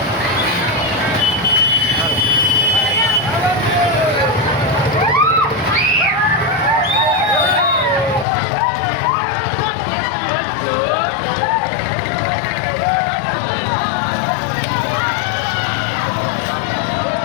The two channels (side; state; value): right; drops out; at 8.2 s